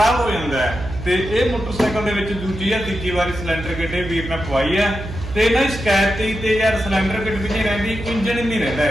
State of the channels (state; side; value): noise; right; hum, 9 dB below the sound